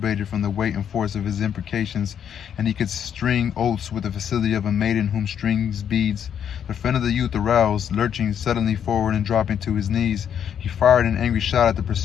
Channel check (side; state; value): right; quieter; 8.7 dB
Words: from the weight and force of his imprecations, and he could string oaths with the facility of a maiden whom strings beads. The friend of the youth aroused, lurching suddenly forward and dropping to his knees. He fired an angry shot at the